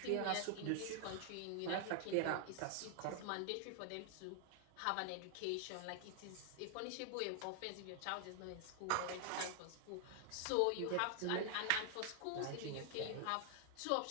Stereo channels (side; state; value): both; different; correlation 0.00